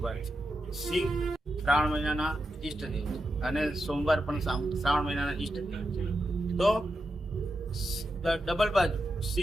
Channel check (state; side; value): normal; both; correlation 0.87